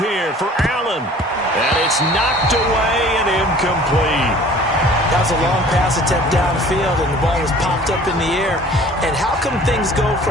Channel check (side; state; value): both; normal; correlation 0.49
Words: for Allen. And it's knocked away and incomplete. That was a long pass attempt downfield, and the ball was popped up in the air. And how come things go